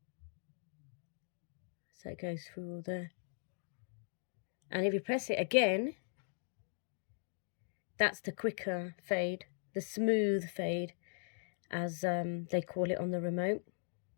So it goes through all there. And if you press it again, that's the quicker fade, the smooth fade, as they call it on the remote.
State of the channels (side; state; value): right; silent; digital silence